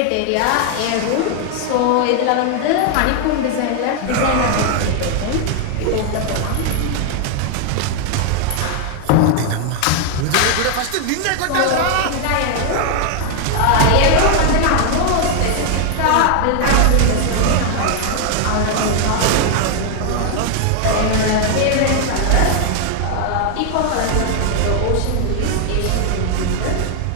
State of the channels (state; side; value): different; both; correlation 0.00